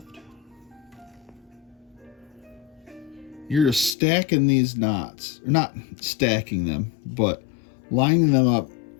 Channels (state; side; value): drops out; right; at 4.0 s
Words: You're just stacking these knots, or not stacking them, but lining them up